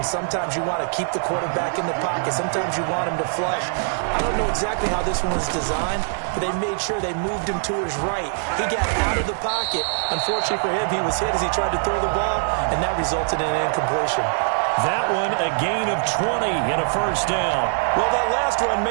Sometimes you want to keep the quarterback in the pocket. Sometimes you want him to flush. I don't know exactly how this one was designed, but they made sure they moved him to his right. He got out of the pocket. Unfortunately for him, he was hit as he tried to throw the ball, and that resulted in an incompletion. That one a gain of 20 and a first down. Well, that last run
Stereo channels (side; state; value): left; silent; digital silence